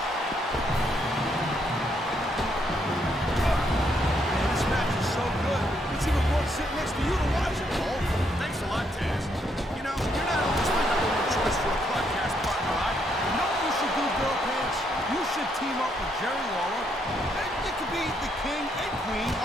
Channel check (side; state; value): both; normal; correlation 0.74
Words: Man, this match is so good. It's even worth sitting next to you to watch it, Cole. Thanks a lot, Taz. You know, you're not always my number one choice for a podcast partner, right? You know what you should do, Girl Pants? You should team up with Jerry Lawler. And it could be the king and queen